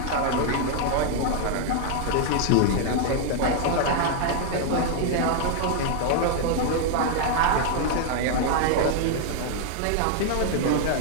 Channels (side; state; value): both; different; correlation 0.00